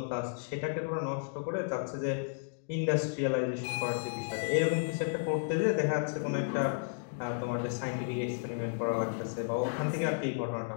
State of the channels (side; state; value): right; silent; digital silence